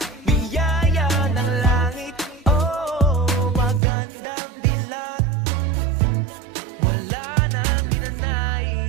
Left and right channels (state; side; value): drops out; left; at 3.8 s